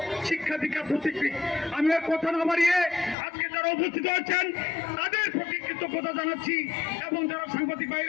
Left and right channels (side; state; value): right; drops out; at 3.2 s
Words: শিক্ষা দীক্ষা প্রতীকী। আমি আর কথা না বাড়িয়ে আজকে যারা উপস্থিত আছেন তাদের প্রতি কৃতজ্ঞতা জানাচ্ছি এবং যারা সাংবাদিক